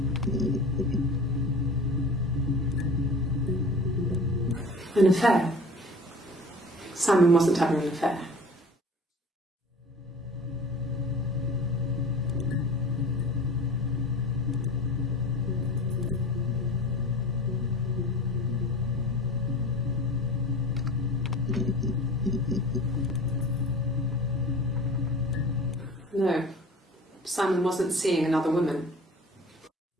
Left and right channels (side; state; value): both; normal; correlation 0.40